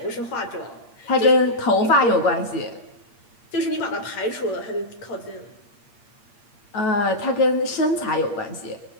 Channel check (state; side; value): late; right; 8.6 ms